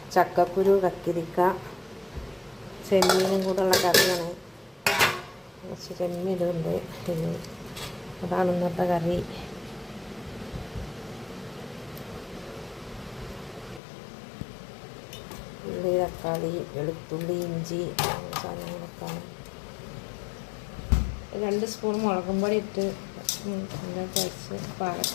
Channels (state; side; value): drops out; right; at 13.8 s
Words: ചക്കക്കുരു, കക്കിരിക്ക, ചെമ്മീനും കൂടെ ഉള്ള കറിയാണ്. കുറച്ച് ചെമ്മീനുണ്ട്. അതാണ് ഇന്നത്തെ കറി. ഉള്ളി, തക്കാളി, വെളുത്തുള്ളി, ഇഞ്ചി സാധനങ്ങളൊക്കെയാണ്. 2 സ്പൂൺ മുളകും പൊടി ഇട്ട് കഴിച്ച്